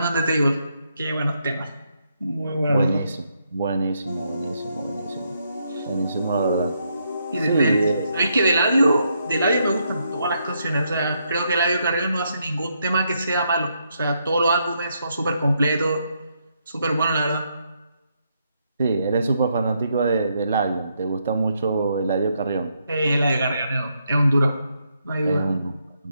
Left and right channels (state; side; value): inverted; both; correlation -0.78